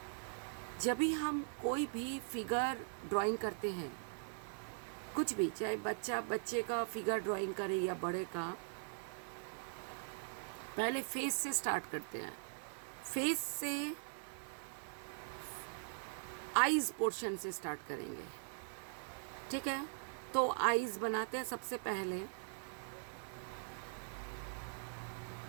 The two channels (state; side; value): silent; left; digital silence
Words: जब भी हम कोई भी फिगर ड्राइंग करते हैं, कुछ भी, चाहे बच्चे का फिगर ड्राइंग करे या बड़े का, पहले फेस से स्टार्ट करते हैं। फेस से आईज पोर्शन से स्टार्ट करेंगे। ठीक है, तो आईज बनाते हैं सबसे पहले।